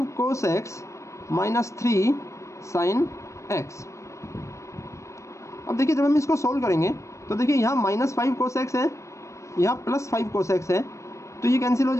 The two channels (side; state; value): right; late; 0.15 ms